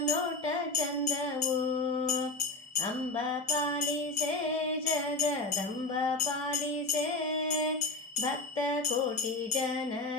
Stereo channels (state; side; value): quieter; right; 3.1 dB